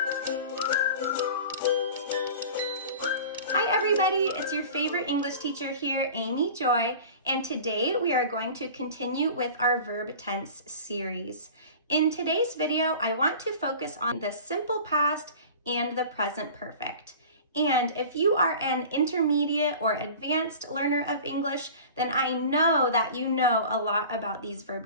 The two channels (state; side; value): inverted; both; correlation -0.39